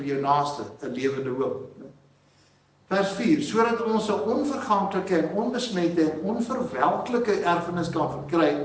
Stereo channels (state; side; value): identical; both; correlation 1.00